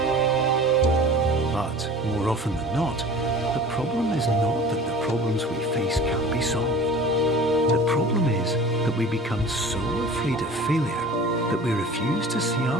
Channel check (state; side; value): normal; both; correlation 0.41